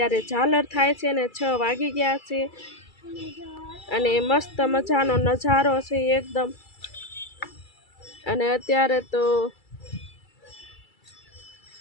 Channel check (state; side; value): late; right; 2.3 ms